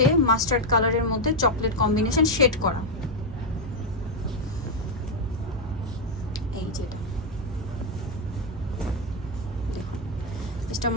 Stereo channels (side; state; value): both; normal; correlation 0.02